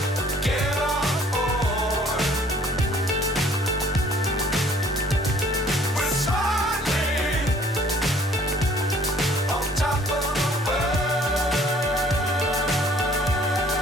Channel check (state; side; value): normal; both; correlation 0.57